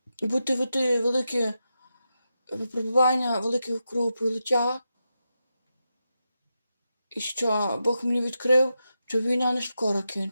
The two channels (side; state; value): both; inverted; correlation -0.88